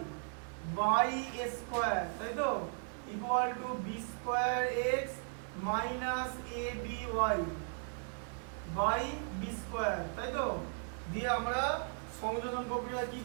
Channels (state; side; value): silent; left; 53 dB below the other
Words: by a square, তাই তো, equal to b square x minus ab y by b square, তাই তো। দিয়ে আমরা সংযোজন প্রক্রিয়া কি